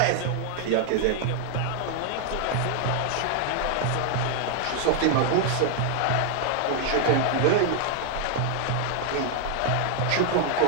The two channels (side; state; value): both; different; correlation 0.00